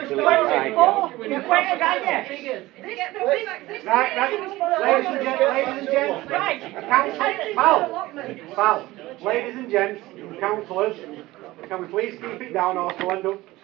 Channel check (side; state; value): left; quieter; 18.4 dB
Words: so Where are it's you? Right, ladies and gents, Right. Pal, ladies and gents, councillors, can we please keep it down or we'll end up